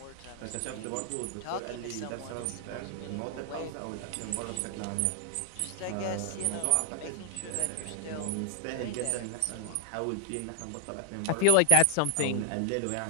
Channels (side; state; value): both; different; correlation 0.00